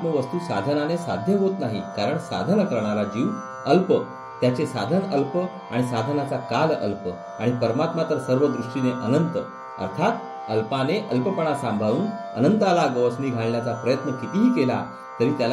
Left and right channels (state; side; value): identical; both; correlation 1.00